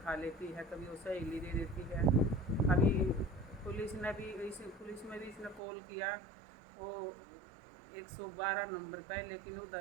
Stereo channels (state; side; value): drops out; left; at 5.6 s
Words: खा लेती है, कभी वो सहेली दे देती है। अभी पुलिस में भी इसने कॉल किया, वो 112 नंबर पे, लेकिन